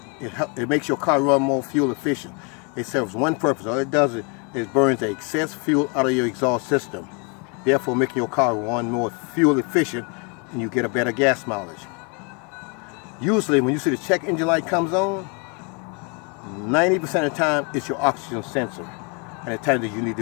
It makes your car run more fuel efficient. It serves one purpose. All it does is burns the excess fuel out of your exhaust system, therefore making your car run more fuel efficient and you get a better gas mileage. Usually when you see the check engine light comes on, 90% of the time it's your oxygen sensor, and the time that you need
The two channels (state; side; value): quieter; right; 34.3 dB